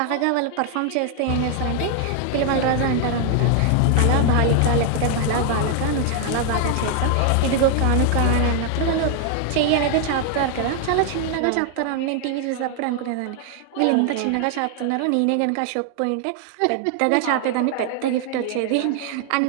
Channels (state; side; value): different; both; correlation 0.00